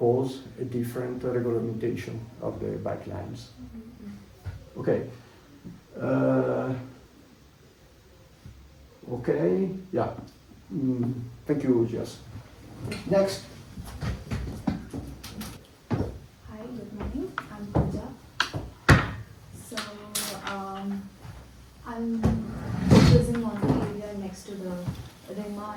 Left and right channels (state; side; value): identical; both; correlation 1.00